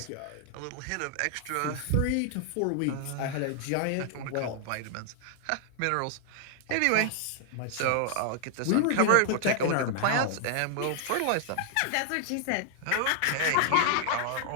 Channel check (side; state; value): both; different; correlation 0.00